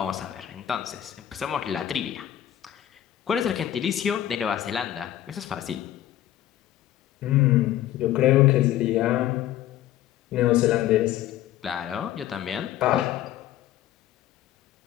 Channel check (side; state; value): right; quieter; 12.6 dB